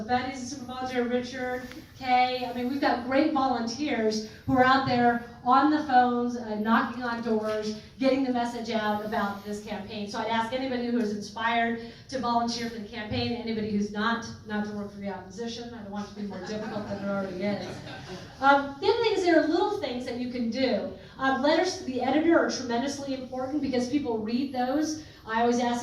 Betty's a super volunteer, Richard, Kay. I mean, we've got great volunteers who are out there on the phones, knocking on doors, getting the message out about this campaign. So I'd ask anybody who is inspired to volunteer for the campaign, anybody who's not to work for the opposition. I don't want it to be more difficult than it already is. The other thing is there are little things that you can do. Letters to the editor are tremendously important because people read those. I always ask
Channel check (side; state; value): both; identical; correlation 1.00